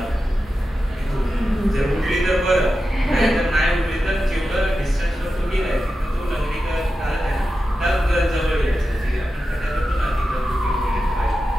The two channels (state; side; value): normal; both; correlation 0.91